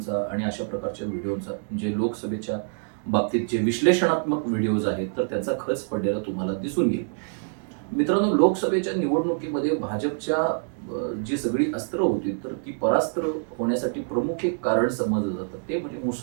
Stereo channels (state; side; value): silent; left; digital silence